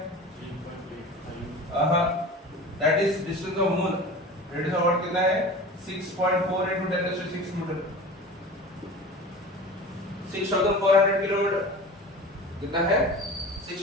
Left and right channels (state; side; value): normal; both; correlation 0.36